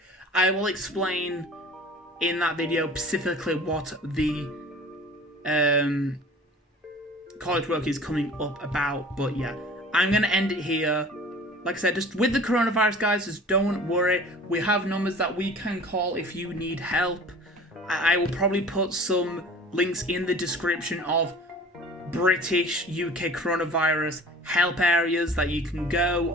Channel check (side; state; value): both; normal; correlation 0.44